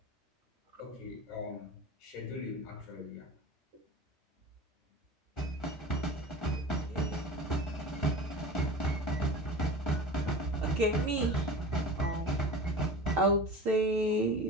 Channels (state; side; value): normal; both; correlation 0.35